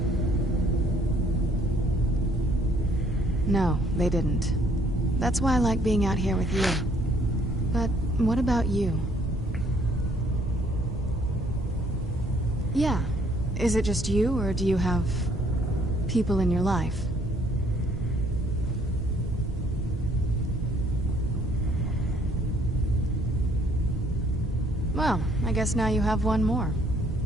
No, they didn't. That's why I like being out here with you. But what about you? Yeah. Is it just you, or do you have people in your life? Well, I guess now you have one more.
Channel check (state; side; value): normal; both; correlation 0.63